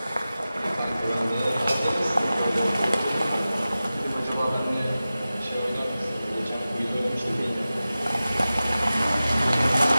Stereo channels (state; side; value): inverted; both; correlation -0.95